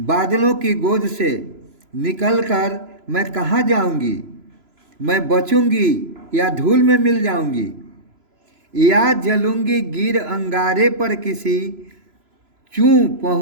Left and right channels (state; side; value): late; left; 3.0 ms